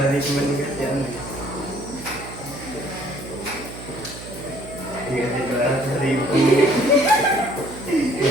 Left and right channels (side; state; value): right; noise; hum, 13 dB below the sound